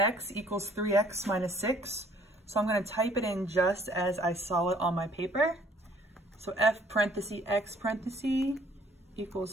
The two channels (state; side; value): normal; both; correlation 0.59